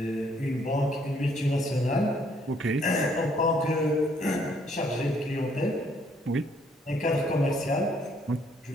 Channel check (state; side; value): normal; both; correlation 0.67